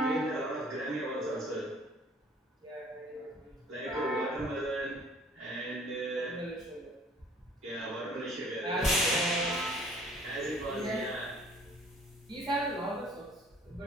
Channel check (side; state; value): both; normal; correlation 0.54